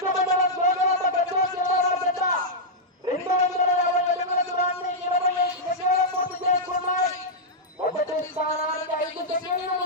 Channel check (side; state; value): both; normal; correlation -0.08